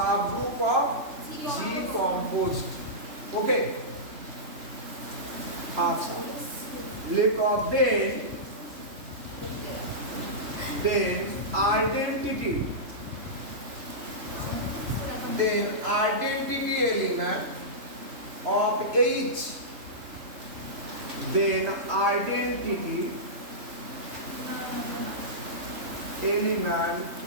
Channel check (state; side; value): late; left; 3.4 ms